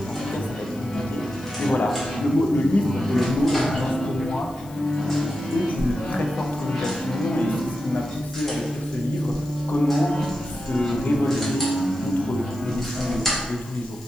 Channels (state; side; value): noise; left; hiss, 23 dB below the sound